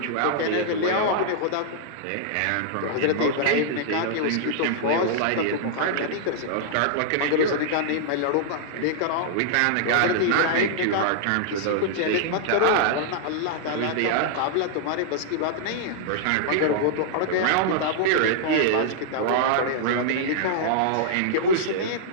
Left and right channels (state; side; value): different; both; correlation -0.01